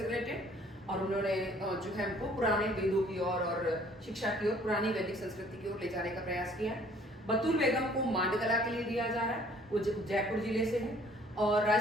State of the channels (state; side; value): normal; both; correlation 0.57